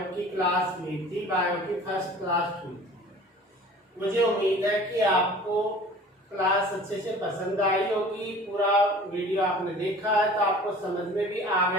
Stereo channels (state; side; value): normal; both; correlation 0.45